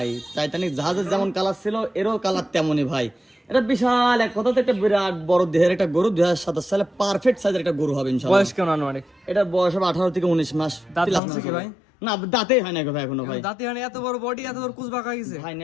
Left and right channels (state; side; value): drops out; right; at 11.2 s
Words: টাইটানিক জাহাজের যেমন কালার ছিল এরও কালার তেমনই ভাই। এটা বিশাল এক কথাতে একটা বিরাট বড় দেহের একটা গরু, 2027 সালে পারফেক্ট সাইজের একটা গরু হবে ইনশাআল্লাহ। বয়স কেমন আনুমানিক? এটা বয়স হবে 18 থেকে 19 মাস। দাঁত ভাঙছে কি ভাই? না, দাঁতেই হয় না ভাই এখনো ভাই। দাঁতে হয় না, এত বড় বডি, এত বড় কোস্ট বাঁকা হয়ে গেছে ভাই